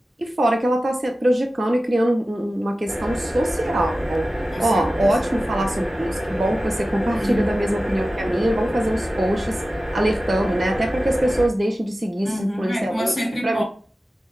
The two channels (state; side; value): normal; both; correlation 0.95